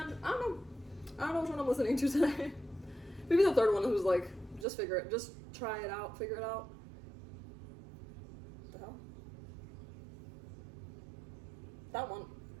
I don't know which one I'm listening to today. Maybe the third one who's like, just try it out, figure it out. What the hell? That one,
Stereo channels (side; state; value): left; drops out; at 4.7 s